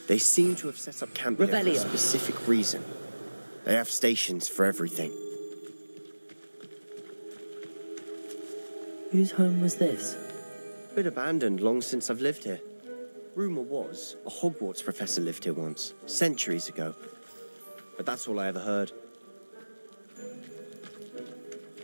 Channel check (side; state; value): both; inverted; correlation -1.00